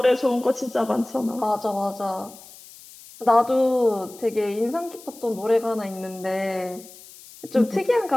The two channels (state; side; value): noise; left; hiss, 20 dB below the sound